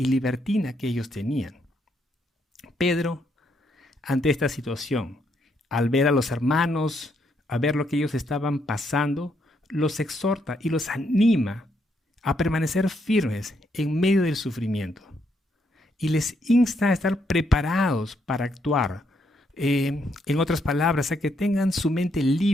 libertina que ellos tenían. Pedro, ante esta situación, al ver a los hermanos, a ver lo que ellos estaban pasando, los exhorta y los anima a permanecer firmes en medio del sufrimiento. Y les insta a estar preparados para actuar. En otras palabras, a que tengan su mente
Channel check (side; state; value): both; normal; correlation 0.75